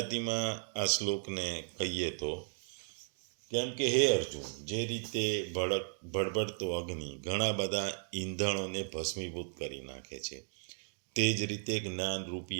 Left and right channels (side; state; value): left; silent; digital silence